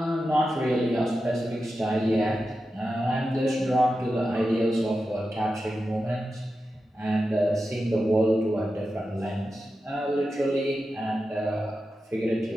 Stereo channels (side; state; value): both; normal; correlation 0.91